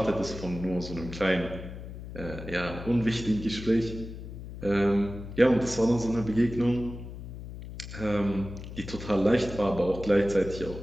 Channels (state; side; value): noise; left; hum, 11 dB below the sound